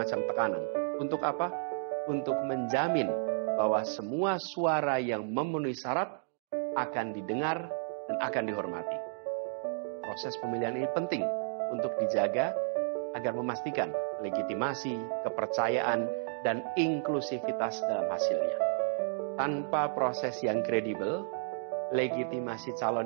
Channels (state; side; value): silent; left; digital silence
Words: tekanan. Untuk apa? Untuk menjamin bahwa semua suara yang memenuhi syarat akan didengar dan akan dihormati. Proses pemilihan ini penting untuk dijaga agar memastikan legitimasi, kepercayaan, dan inklusivitas dalam hasilnya. Tanpa proses yang kredibel, legitimasi